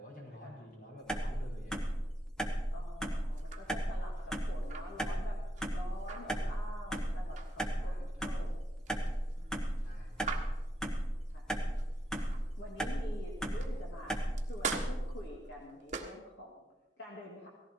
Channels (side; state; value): both; normal; correlation 0.82